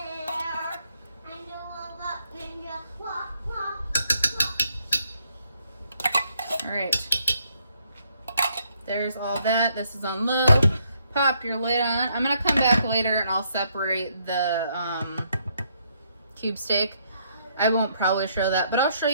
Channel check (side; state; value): both; inverted; correlation -0.72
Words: right. There's all that. This is on low. Pop your lid on. I'm gonna come back later and I'll separate the cube steak. I won't probably show that, but I'll show